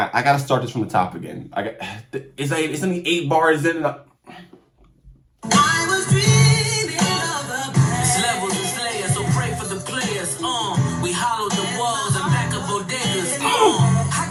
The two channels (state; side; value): identical; both; correlation 1.00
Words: gotta start this from the top again. It's only 8 bars in. I was dreaming of the past. It's levels and slayers, so pray for the players. We hollowed the walls and back up bodegas. I